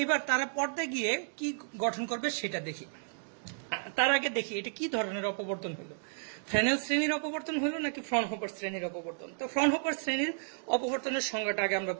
তারা পর্দায় গিয়ে কি গঠন করবে সেটা দেখি। তার আগে দেখি এটা কি ধরনের অপবর্তন হলো, ফ্রেনেল শ্রেণীর অপবর্তন হলো নাকি ফ্রনহোফার শ্রেণীর অপবর্তন। তো ফ্রনহোফার শ্রেণীর অপবর্তনের সংজ্ঞাটা আগে আমরা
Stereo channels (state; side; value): silent; left; digital silence